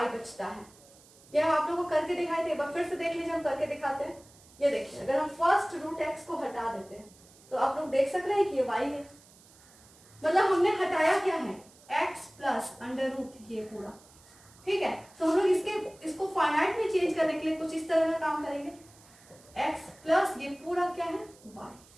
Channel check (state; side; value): noise; right; hiss, 25 dB below the sound